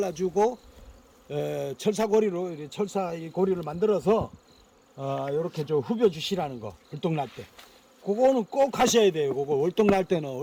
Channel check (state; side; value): identical; both; correlation 1.00